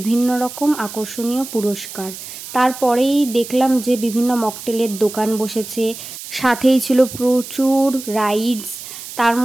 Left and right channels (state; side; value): noise; right; hiss, 12 dB below the sound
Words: রকম আকর্ষণীয় পুরস্কার। তারপরেই দেখলাম যে বিভিন্ন মকটেলের দোকান বসেছে, সাথেই ছিল প্রচুর রাইডস। তার